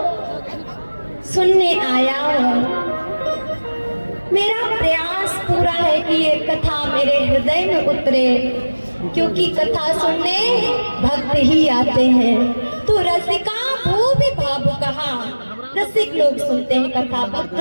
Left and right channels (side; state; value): both; inverted; correlation -1.00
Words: सुनने आया हूँ। मेरा प्रयास पूरा है कि ये कथा मेरे हृदय में उतरे, क्योंकि कथा सुनने भक्त ही आते हैं। तो रसिका वो भी भावु कहा, रसिक लोग सुनते हैं कथा, भक्त